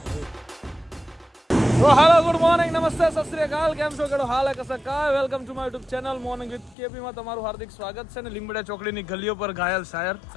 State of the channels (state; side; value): drops out; right; at 6.8 s